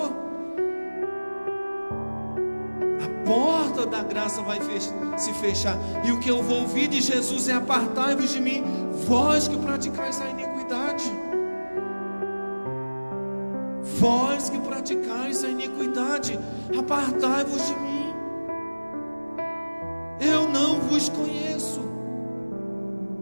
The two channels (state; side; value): inverted; both; correlation -1.00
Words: A porta da graça vai se fechar, e o que eu vou ouvir de Jesus é: apartai-vos de mim, vós que praticais a iniquidade. Vós que praticais a iniquidade, apartai-vos de mim, eu não vos conheço.